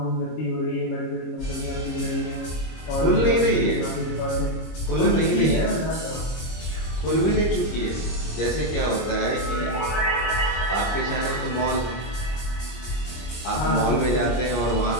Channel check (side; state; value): right; late; 25 ms